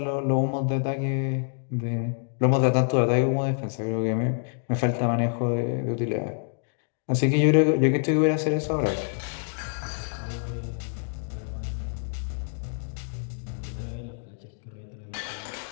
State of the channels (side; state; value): right; silent; 60 dB below the other